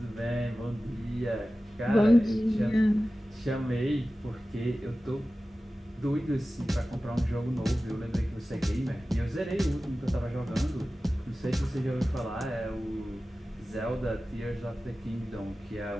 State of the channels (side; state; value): both; normal; correlation 0.95